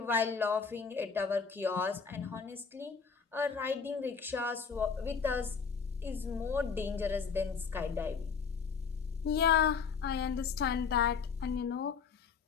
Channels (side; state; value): right; quieter; 5.9 dB